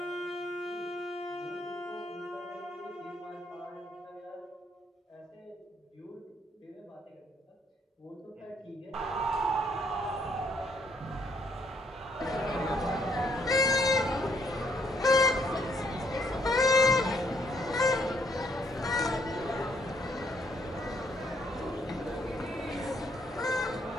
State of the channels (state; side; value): normal; both; correlation 0.69